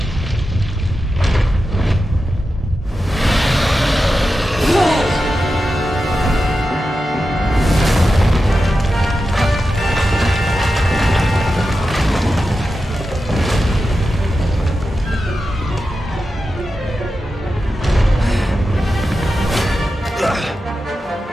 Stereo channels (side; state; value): both; normal; correlation 0.91